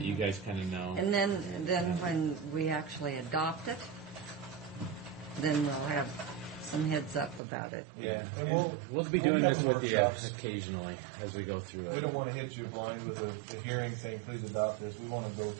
you guys kind of know. And then when we actually adopt it, then we'll have some heads up about it. Yeah, and we'll be doing this with you occasionally as we go through it. We don't want to hit you blind with a hearing saying, please adopt this. We want to go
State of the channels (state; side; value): drops out; left; at 7.4 s